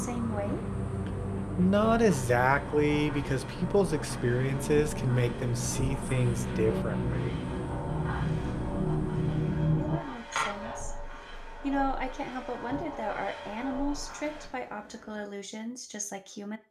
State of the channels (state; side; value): identical; both; correlation 1.00